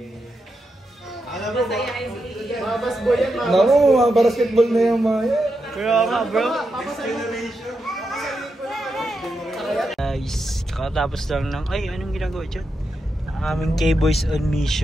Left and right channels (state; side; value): normal; both; correlation 0.86